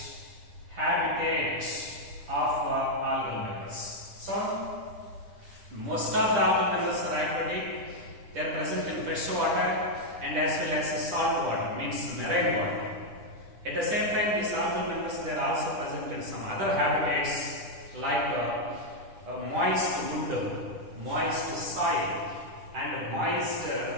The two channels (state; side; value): late; left; 10 ms